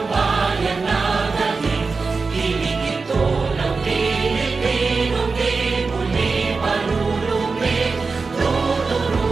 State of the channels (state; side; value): quieter; left; 4.3 dB